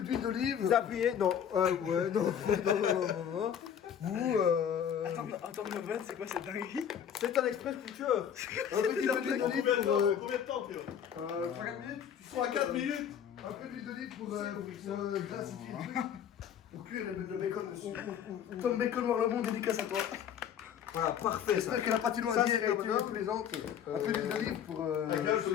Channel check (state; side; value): quieter; right; 8.7 dB